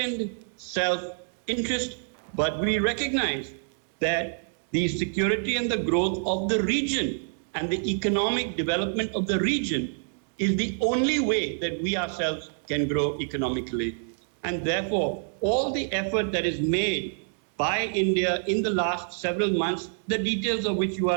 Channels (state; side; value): silent; left; digital silence